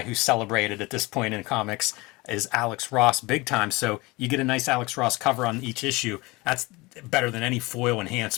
who's celebrated at this point in comics is Alex Ross big time. So you get a nice Alex Ross cover on each issue. That's better than any foil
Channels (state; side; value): quieter; right; 23.4 dB